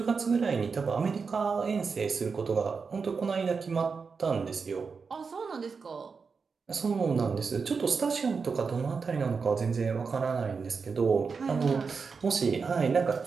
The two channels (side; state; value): left; quieter; 5.2 dB